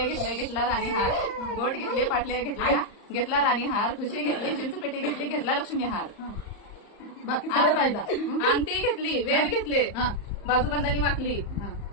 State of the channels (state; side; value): late; right; 35 ms